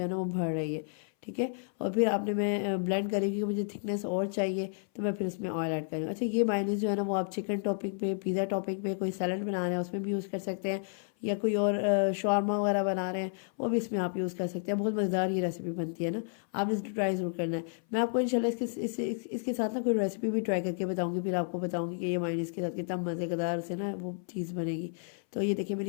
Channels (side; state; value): right; silent; 57 dB below the other